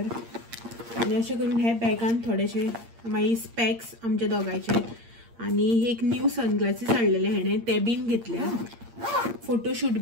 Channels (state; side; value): late; left; 8.7 ms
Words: आनी अशें करून हे बॅगान थोडेशे मागीर स्पॅक्स आमचे दोगांयचे आनी एक न्यू सनग्लासीस हाडलेले हेणें ते बीन घेतल्या. फोटोशूट